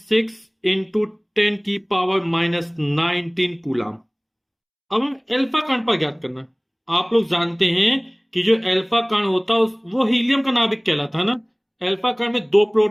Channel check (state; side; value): identical; both; correlation 1.00